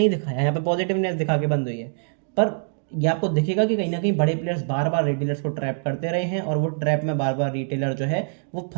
दिखाया, यहाँ पे पॉजिटिवनेस दिखा के बंद हुई है, पर ये आपको दिखेगा कि कहीं ना कहीं बड़े प्लेयर्स बार बार रिटेलर्स को ट्रैप करते रहे हैं, और वो ट्रैप में बार बार रिटेलर जो है वो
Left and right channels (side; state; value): left; silent; digital silence